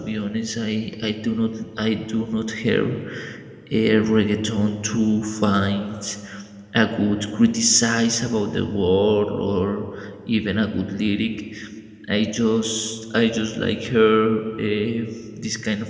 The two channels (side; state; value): both; identical; correlation 1.00